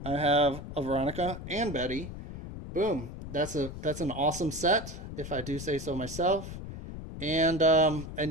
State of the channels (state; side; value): noise; left; rumble, 10 dB below the sound